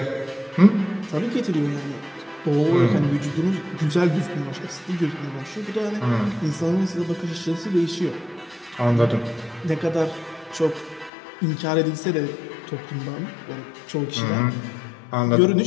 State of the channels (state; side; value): drops out; right; at 11.1 s